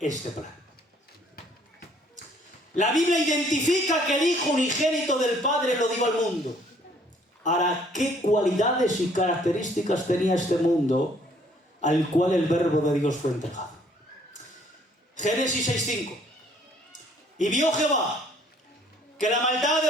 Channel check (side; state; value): both; normal; correlation 0.61